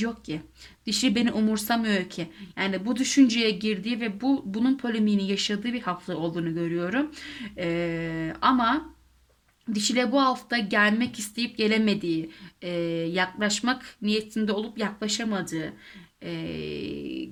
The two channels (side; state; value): both; identical; correlation 1.00